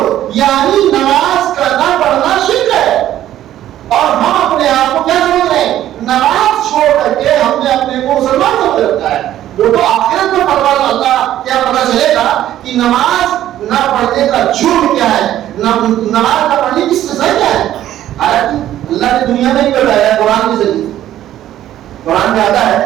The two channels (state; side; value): quieter; left; 12.5 dB